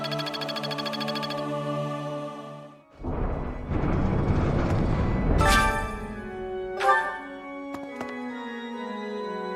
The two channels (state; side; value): identical; both; correlation 1.00